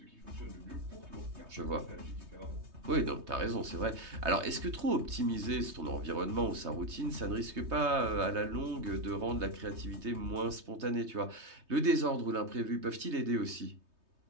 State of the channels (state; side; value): late; left; 3.2 ms